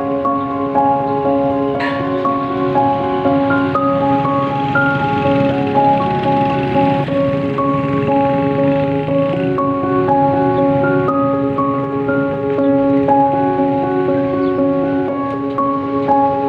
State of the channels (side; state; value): both; identical; correlation 1.00